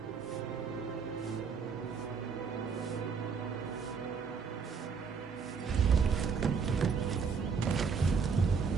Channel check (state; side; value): quieter; left; 5.7 dB